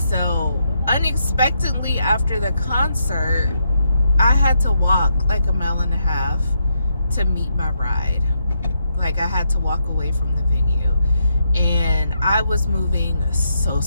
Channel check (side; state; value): both; inverted; correlation -0.79